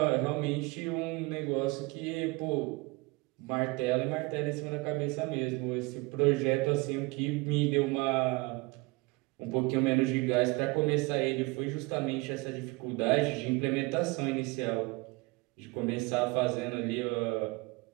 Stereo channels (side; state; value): left; quieter; 25.1 dB